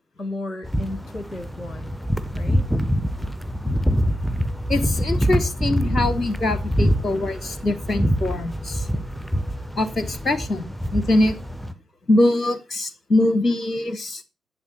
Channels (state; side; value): normal; both; correlation 0.89